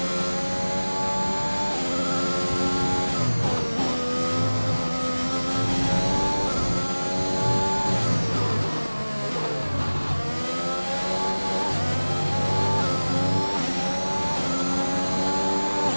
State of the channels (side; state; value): both; inverted; correlation -1.00